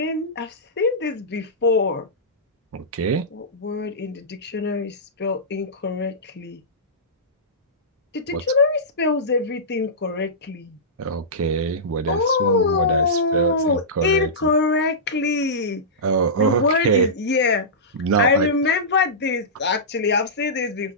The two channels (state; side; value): normal; both; correlation -0.17